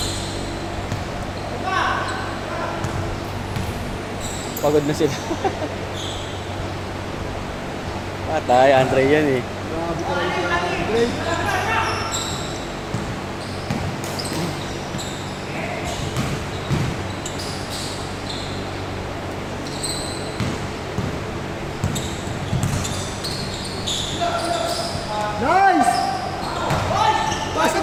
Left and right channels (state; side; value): identical; both; correlation 1.00